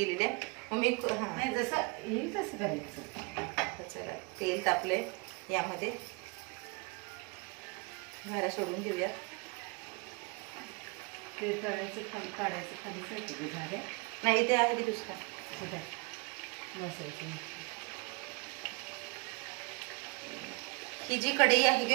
आहे. मम्मी जसं येईल तसं करायचं. चला तेल तापलंय, यामध्ये घाऱ्या सोडून घेऊया. ते तळायचं खाली काढायचं, खाली जायचं झाल्या नाही ते आहे की दुसरा बसायचं. ही जी कढई आहे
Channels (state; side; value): quieter; left; 29.3 dB